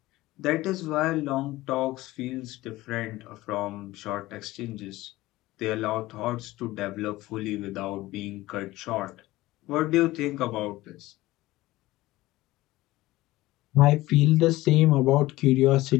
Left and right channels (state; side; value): quieter; right; 18.0 dB